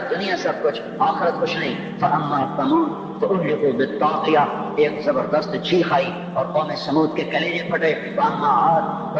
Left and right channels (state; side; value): identical; both; correlation 1.00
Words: دنیا سب کچھ، آخرت کچھ نہیں۔ فاما ثمود فاہلکوا بالطاغیہ، ایک زبردست چیخ آئی اور قوم سمود کے کلیجے پھٹے۔ واما عاد